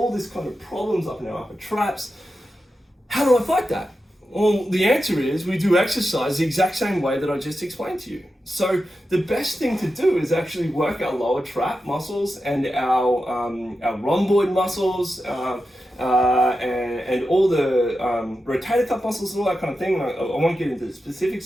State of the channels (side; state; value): both; normal; correlation 0.90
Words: this kind of problems up in our upper traps. How do I fight that? Well, the answer is we do exercise the exact same way that I just explained to you. So the best thing to do is actually work our lower trap muscles and our rhomboid muscles and all the rotator cuff muscles and all that kind of thing. I won't get into the